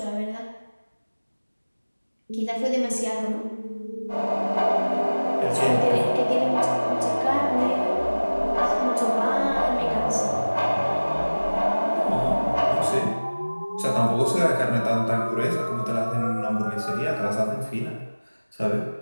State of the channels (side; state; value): both; inverted; correlation -1.00